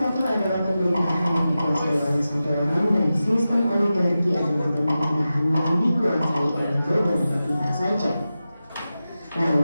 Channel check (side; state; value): both; inverted; correlation -0.93